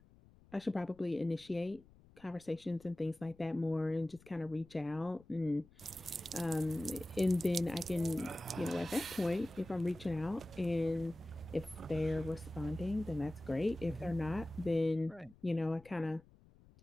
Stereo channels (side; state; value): left; noise; rumble, 25 dB below the sound